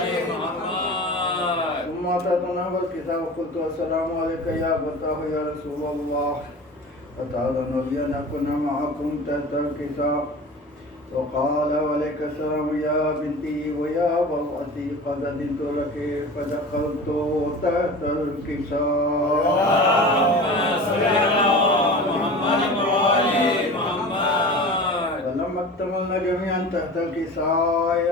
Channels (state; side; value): normal; both; correlation 0.35